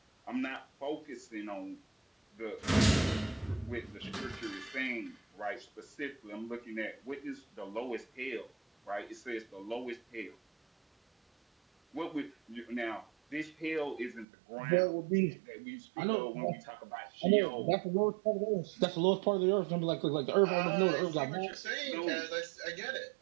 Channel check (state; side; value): drops out; left; at 14.2 s